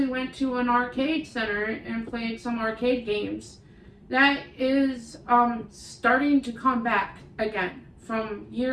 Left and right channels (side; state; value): both; identical; correlation 1.00